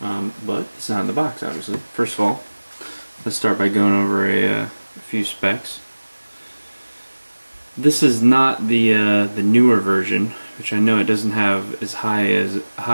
But it's not in the box, obviously. First of all, let's start by going over a few specs. This is not the newer version, which I know it doesn't have as high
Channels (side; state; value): both; inverted; correlation -1.00